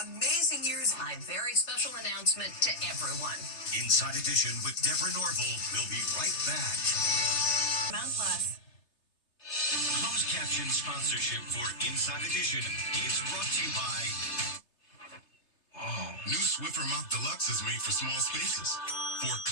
amazing years. A very special announcement to everyone. Inside Edition with Deborah Norville. We'll be right back. Mount Plus. Closed caption sponsorship for Inside Edition is brought to you by... New Swiffer Mop Deluxe is made for small spaces. For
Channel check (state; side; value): late; right; 3.3 ms